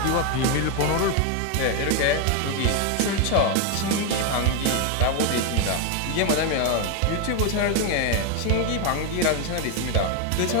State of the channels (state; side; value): different; both; correlation 0.01